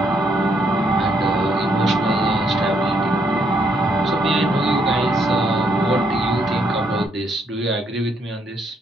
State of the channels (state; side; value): normal; both; correlation 0.73